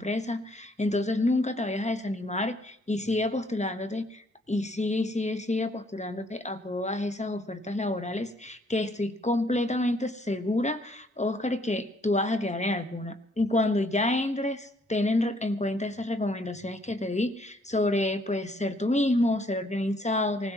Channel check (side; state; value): both; normal; correlation 0.66